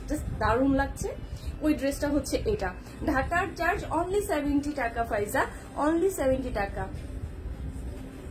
দারুণ লাগছে, ওই ড্রেসটা হচ্ছে এটা। ঢাকার চার্জ অনলি 70 টাকা ফাইজা, অনলি 70 টাকা।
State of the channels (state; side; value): identical; both; correlation 1.00